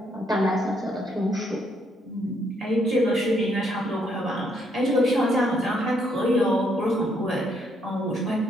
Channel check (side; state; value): both; normal; correlation 0.72